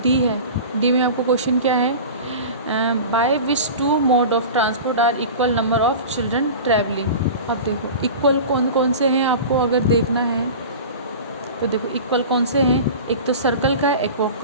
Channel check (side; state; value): both; inverted; correlation -0.34